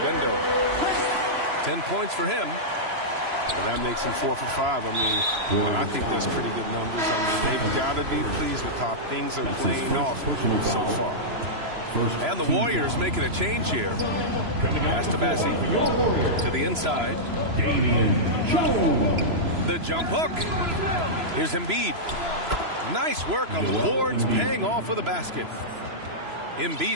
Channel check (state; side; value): late; left; 3.0 ms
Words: 10 points for him. And that makes him 4 for 5. I mean, I think that's pretty good numbers. I mean, they've got to be pleased with how things are playing off so far. And the Warriors making a change here. Pass to Bassi. To the inside. Damian Jones. The jump hook. Here's Embiid. Nice work on the boards, paying off with a basket.